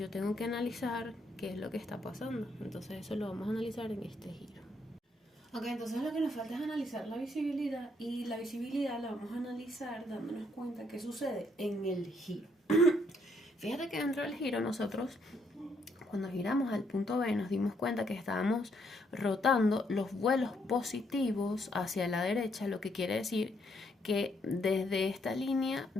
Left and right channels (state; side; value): normal; both; correlation 0.72